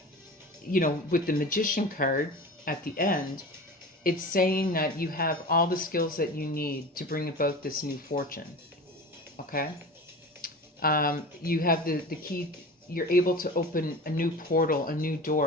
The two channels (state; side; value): normal; both; correlation 0.34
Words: with the magician card at the end, it's saying that you have all the skills that you need to bring about this new fortune, okay? You have the key. You're able to open a new portal, a new